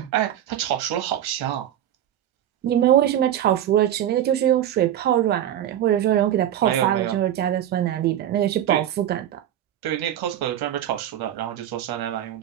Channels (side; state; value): left; quieter; 11.2 dB